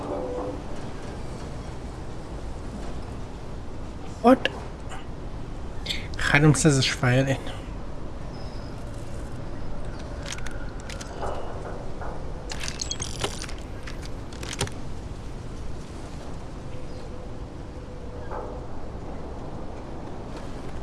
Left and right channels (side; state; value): both; identical; correlation 1.00